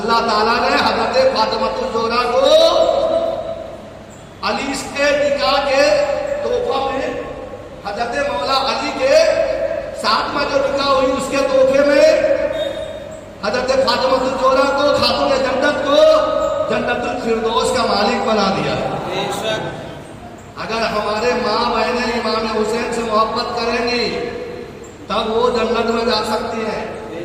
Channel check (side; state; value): both; identical; correlation 1.00